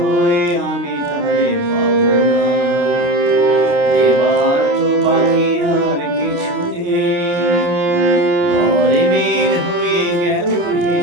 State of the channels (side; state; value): left; late; 28 ms